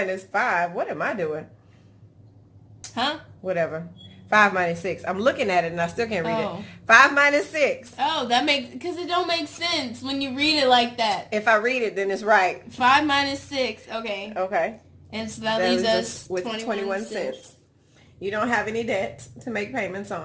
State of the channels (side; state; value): both; identical; correlation 1.00